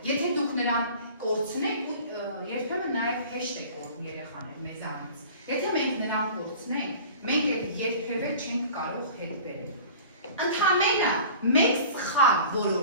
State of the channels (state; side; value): inverted; both; correlation -0.43